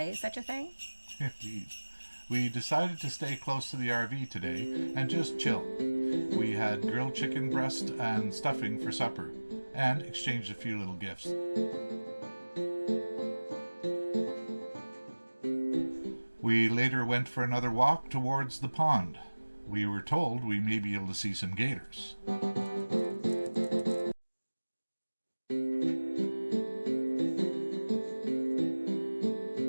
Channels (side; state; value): both; inverted; correlation -1.00